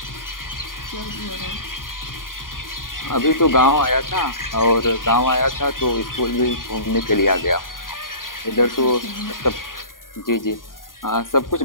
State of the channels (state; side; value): late; right; 0.90 ms